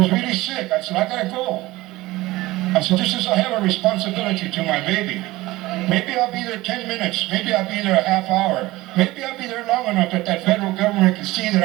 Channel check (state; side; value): quieter; left; 18.8 dB